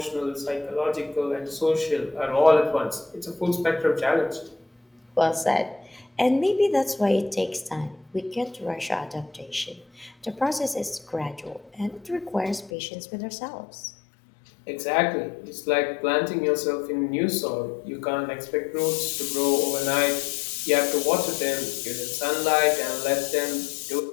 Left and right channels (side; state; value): right; drops out; at 12.7 s